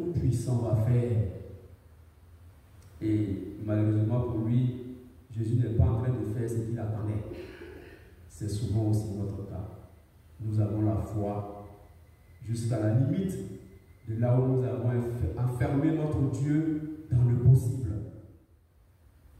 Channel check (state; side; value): identical; both; correlation 1.00